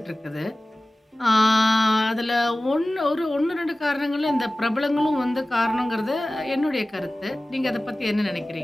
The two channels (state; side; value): normal; both; correlation 0.97